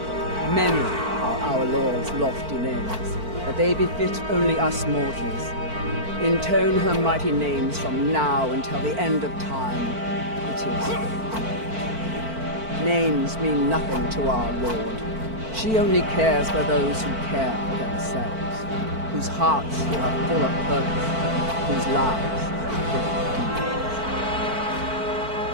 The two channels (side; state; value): left; late; 4.5 ms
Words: Many are our Lord's lofty names, but they befit only us mortals. Intone her mighty names from now until the end of time. It is names mean nothing to our Lord. She only cares for those who care for themselves, whose hearts are full of purpose, whose lives are full of